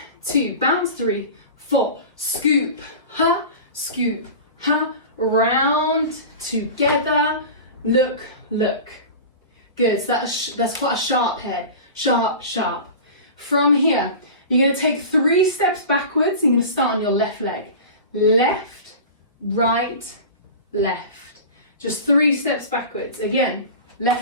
2, bounce, 3, 4, scoop, round, together, look. Good, so that's quite a sharp head, sharp. From here, you're going to take 3 steps backwards. You're going to start on your left leg. Left, right, left. Just 3 steps backwards. Again,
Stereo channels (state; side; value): inverted; both; correlation -0.33